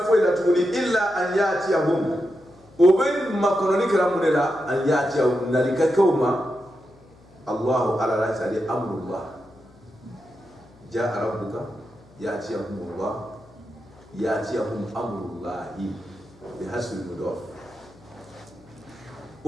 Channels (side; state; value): left; noise; hum, 28 dB below the sound